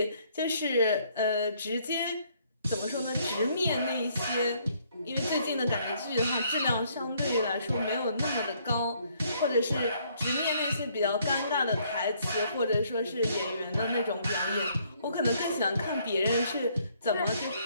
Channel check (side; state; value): both; inverted; correlation -0.67